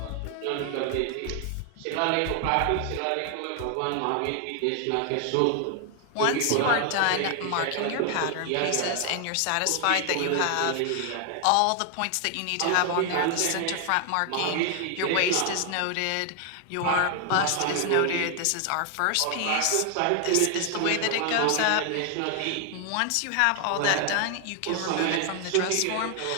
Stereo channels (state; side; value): different; both; correlation 0.00